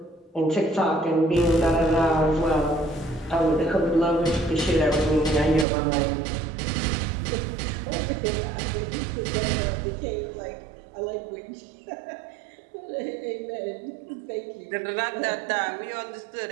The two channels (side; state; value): left; drops out; at 5.7 s